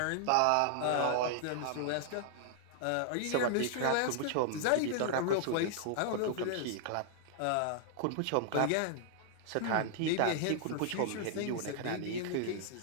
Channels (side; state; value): both; different; correlation -0.01